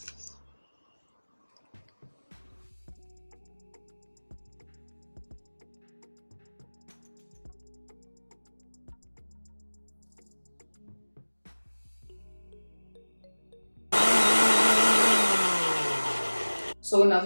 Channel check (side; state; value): both; inverted; correlation -1.00